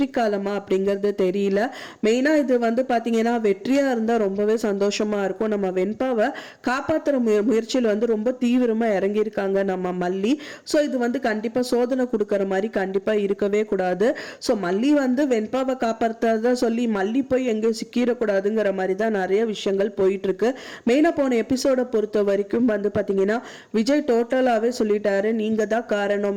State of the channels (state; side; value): identical; both; correlation 1.00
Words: காலமா அப்படிங்கிறது தெரியல. மெயினாக இது வந்து பார்த்தீங்கன்னா வெற்றியாக இருந்தால் ரொம்பவே சந்தோஷமாக இருக்கும். நம்ம வெண்பாவை காப்பாற்றுற முயற்சியில் வந்து ரொம்ப தீவிரமாக இறங்கியிருக்காங்க நம்ம மல்லி. ஸோ இது வந்து கண்டிப்பாக சோதனை கொடுக்குற மாதிரி கண்டிப்பாக இருக்கவே கூடாது. ஸோ மல்லி வந்து வெண்பாவை காப்பாற்றுறதா சொல்லி மல்லி போய் எங்கேயும் சிக்கிடக்கூடாதுங்கிற மாதிரி தான் நிறைய விஷயங்கள் போயிட்டுருக்கு. மெயினாக போன எபிசோடை பொறுத்த வரைக்கும் வந்து பார்த்தீங்கன்னா விஜய் டோட்டலாகவே சொல்லிட்டாரு, நீங்க தான்